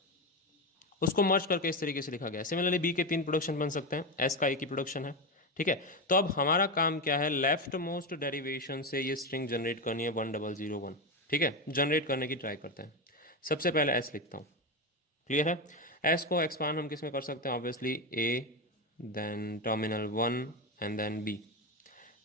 उसको मर्ज करके इस तरीके से लिखा गया है। सिमिलरली बी के 3 प्रोडक्शन बन सकते हैं, एस का एक ही प्रोडक्शन है, ठीक है। तो अब हमारा काम क्या है, लेफ्ट मोस्ट डेरिवेशन से ये स्ट्रिंग जनरेट करनी है 1001, ठीक है। जनरेट करने की ट्राई करते हैं। सबसे पहले एस लिखता हूँ, क्लियर है। एस को एक्सपांड हम किस में कर सकते हैं, obviously A, then terminal 1 and then B.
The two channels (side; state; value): both; normal; correlation 0.15